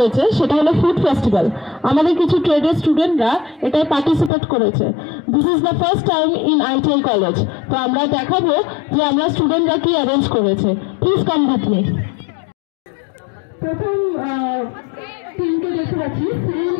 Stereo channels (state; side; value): drops out; right; at 4.3 s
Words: সেটা হলো ফুড ফেস্টিভ্যাল। আমাদের কিছু ট্রেডের স্টুডেন্টরা এটায় পার্টিসিপেট করেছে। This is the first time in ITI college. তো আমরা দেখাবো যে আমরা স্টুডেন্টরা কি অ্যারেঞ্জ করেছে। Please come with me. প্রথম টিমকে দেখতে পাচ্ছি